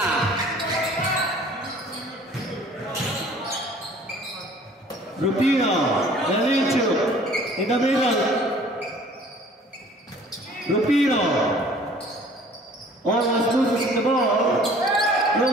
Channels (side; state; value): both; normal; correlation 0.52